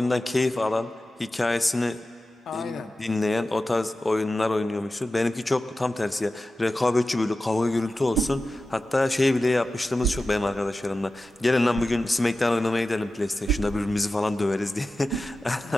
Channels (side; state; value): both; normal; correlation 0.94